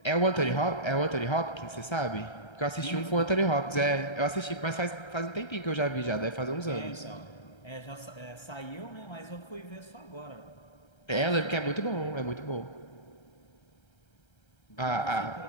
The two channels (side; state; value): right; late; 1.3 ms